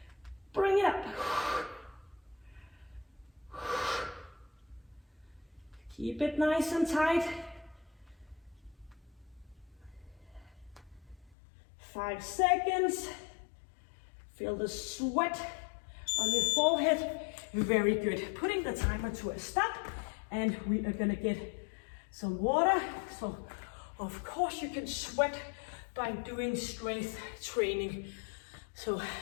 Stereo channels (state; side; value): drops out; right; at 11.4 s